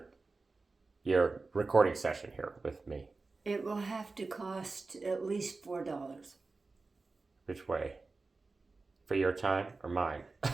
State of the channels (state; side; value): quieter; left; 3.8 dB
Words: your recording session here with me? It will have to cost at least $4. Which way? For your time or mine?